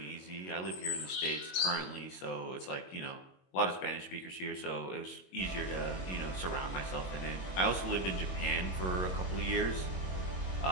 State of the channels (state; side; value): late; right; 22 ms